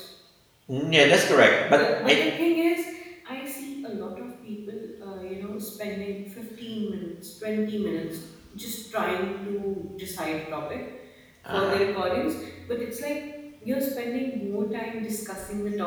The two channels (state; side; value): identical; both; correlation 1.00